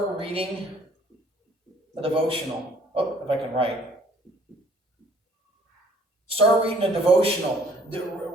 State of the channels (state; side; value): normal; both; correlation 0.58